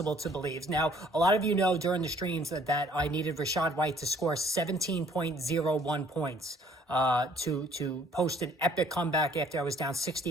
to believe. Now, a lot of you know during the streams that I needed Rachaad White to score 17.01 points to post an epic comeback after I was down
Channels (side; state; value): both; normal; correlation 0.59